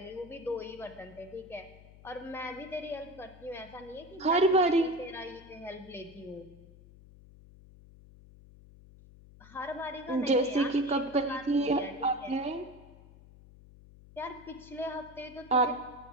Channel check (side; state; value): left; noise; hum, 21 dB below the sound